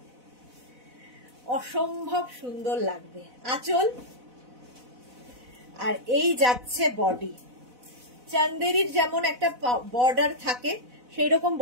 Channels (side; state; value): left; late; 4.0 ms